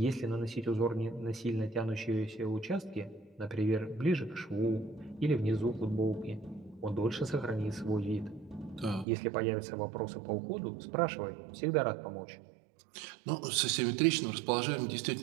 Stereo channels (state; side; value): drops out; left; at 9.1 s